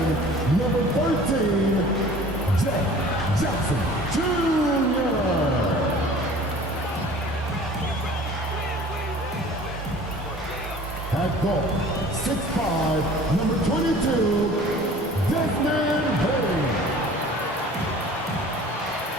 number 13, Jeff Jackson Jr. At guard, 6'5", number 22, Desmond Hayes.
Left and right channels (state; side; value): normal; both; correlation 0.46